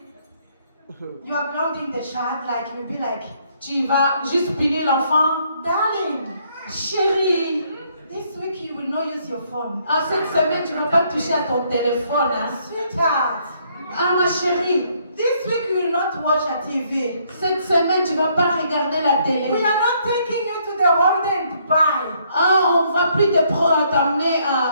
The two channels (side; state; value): both; inverted; correlation -0.69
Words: you are grounding the child like you'll be like, tu vas juste punir l'enfant. darling, Chérie, this week you will not use your phone. cette semaine, tu ne vas pas toucher à ton téléphone. Hein? Sweetheart, Ma chérie, this week you will not watch a TV. cette semaine, tu ne vas pas regarder la We télé. are not taking you to the holiday in Dubai. On ne va plus t'amener